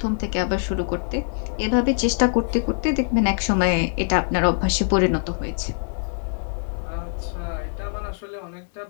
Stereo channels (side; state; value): right; silent; 63 dB below the other